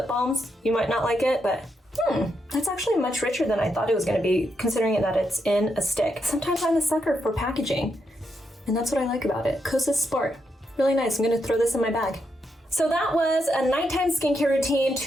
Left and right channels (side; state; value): both; normal; correlation 0.82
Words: balms, you might not like it, but that's actually much richer than I thought it was going to be, considering that it's in a stick. Sometimes I'm a sucker for packaging, and that's what I like about it. Kosasport, really nice. I'm going to throw this in my bag. So that was a nighttime skincare routine